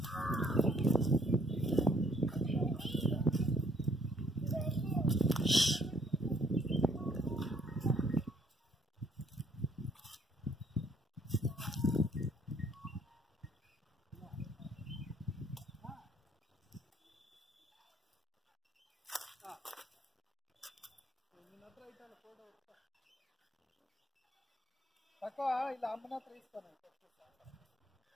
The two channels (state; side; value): normal; both; correlation 0.65